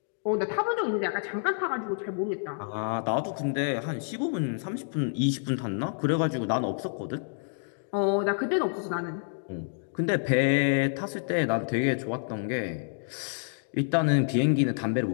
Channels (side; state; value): right; silent; digital silence